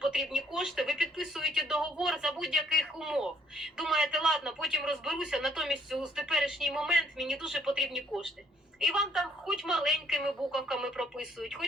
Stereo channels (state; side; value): normal; both; correlation 0.64